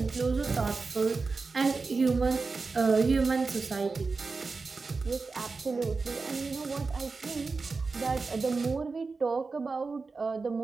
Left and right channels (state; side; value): quieter; left; 4.2 dB